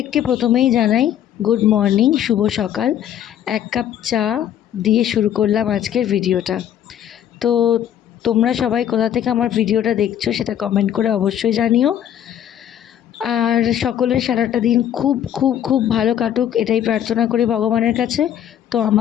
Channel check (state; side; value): quieter; right; 10.4 dB